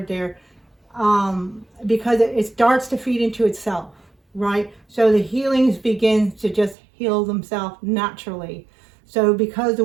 there, because it starts to feed into itself, right? So the healings begin to just heal themselves naturally. So because the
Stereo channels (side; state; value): left; drops out; at 6.8 s